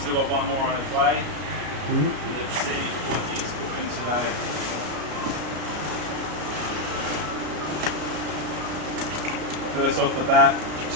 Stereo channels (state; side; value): late; left; 33 ms